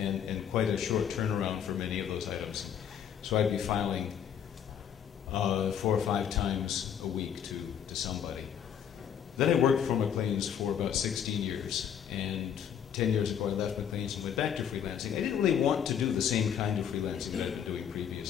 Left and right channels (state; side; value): quieter; right; 8.6 dB